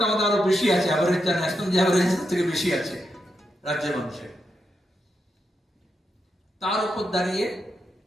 আমাদের আরো বেশি আছে, অ্যাভারেজ ন্যাশনাল অ্যাভারেজ থেকে বেশি আছে রাজ্যের মানুষের। তার উপর দাঁড়িয়ে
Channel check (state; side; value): normal; both; correlation 0.84